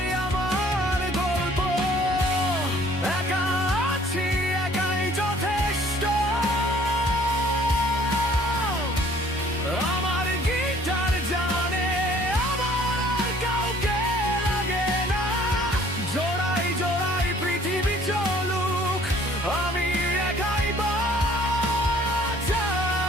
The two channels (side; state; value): both; normal; correlation 0.56